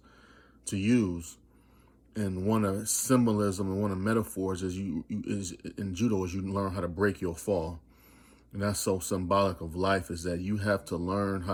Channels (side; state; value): both; identical; correlation 1.00